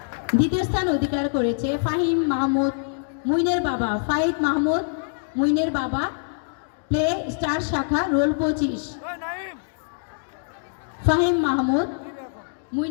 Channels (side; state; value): right; silent; digital silence